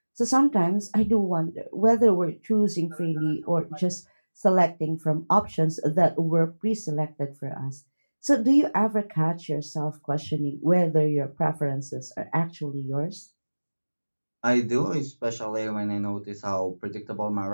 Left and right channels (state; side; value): inverted; both; correlation -1.00